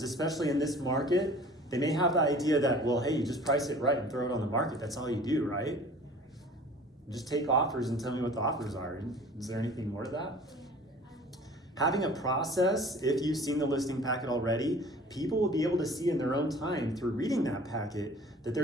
especially in this market, they may have the idea that, well, hey, you just price it right and throw it on the market. That's all you do, right? Just take offers and tell me what the offers are. Is there anything more to that? Having a process, if you've seen the listing packet already, people will be able to see in their own time through reading that packet that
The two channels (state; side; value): normal; both; correlation 0.46